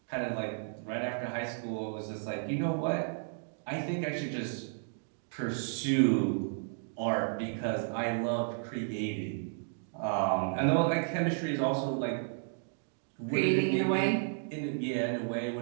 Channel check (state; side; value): silent; left; digital silence